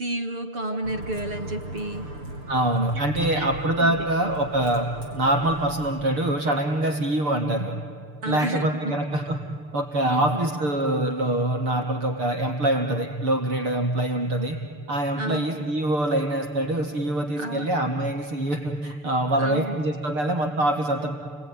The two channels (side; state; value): left; late; 6.8 ms